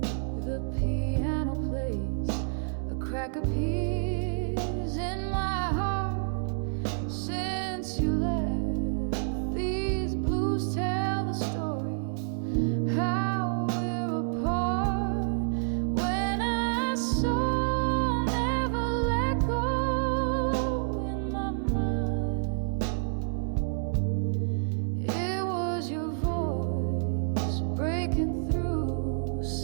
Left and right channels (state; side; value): silent; left; 59 dB below the other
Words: crack appears in my heart since you left. These blues tell the story how we're apart. When I saw never let go in my mind, it was your voice breaking through,